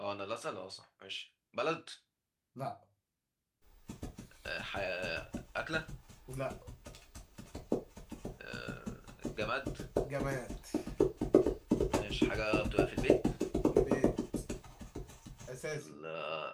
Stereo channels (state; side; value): identical; both; correlation 1.00